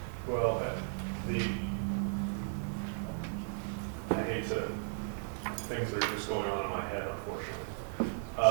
Well, I hate to, things are just going on in my head,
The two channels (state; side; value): silent; left; 54 dB below the other